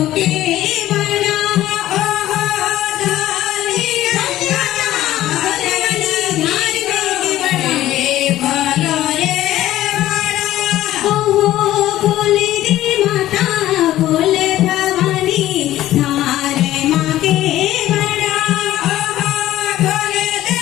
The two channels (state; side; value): quieter; right; 14.2 dB